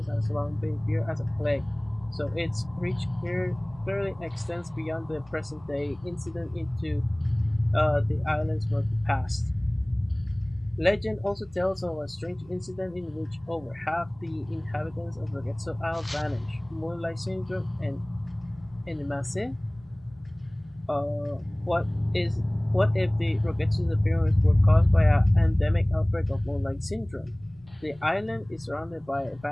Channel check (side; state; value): left; noise; rumble, 25 dB below the sound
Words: has long been feared as a plague, so its reach clearly extends beyond the present day incident into the island's murky past. Legend also tells of a strange incident in which over half the inhabitants of Rogetsu Isle vanished. Moonlight Syndrome and Enimase. Uh, what is what if the Rogetsu's appearance were caused by an endemic outbreak of Moonlight Syndrome? The island is surrounded by a